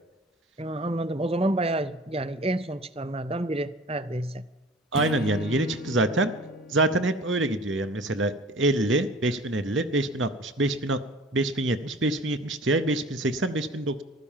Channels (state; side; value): normal; both; correlation 0.44